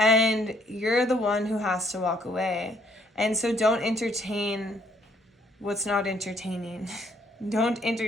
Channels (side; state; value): both; normal; correlation 0.66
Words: you're the one who has to walk away. And so don't entertain what's not entertaining. Don't